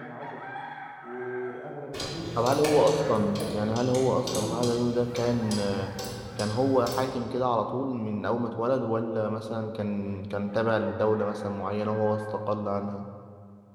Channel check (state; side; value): identical; both; correlation 1.00